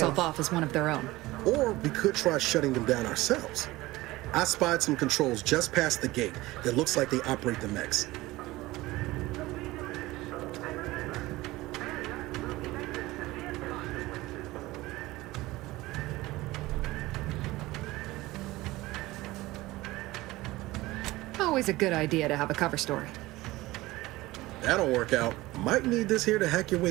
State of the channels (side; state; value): left; quieter; 19.0 dB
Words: off as one of their own. Or we could try shutting them down ourselves. I spied some controls just past the gate that looks like they operate the mechs. Always a good idea to have a cover story. That'll work out. Might need this here to hack your